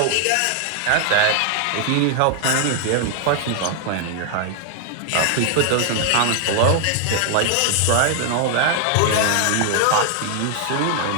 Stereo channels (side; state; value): both; different; correlation 0.00